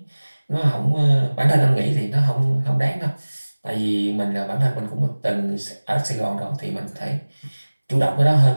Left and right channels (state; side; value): inverted; both; correlation -1.00